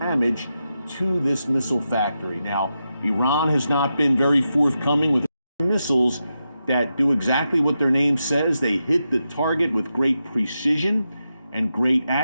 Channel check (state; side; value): inverted; both; correlation -0.87